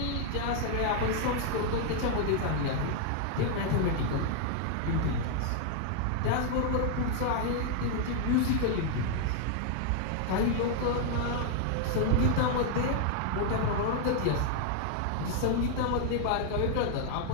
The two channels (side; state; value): both; different; correlation 0.00